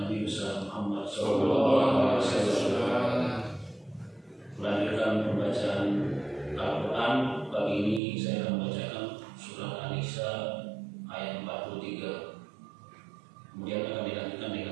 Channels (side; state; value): left; drops out; at 8.0 s